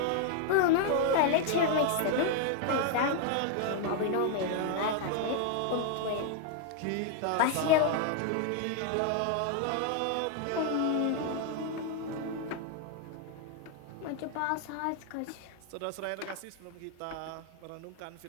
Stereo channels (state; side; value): different; both; correlation 0.00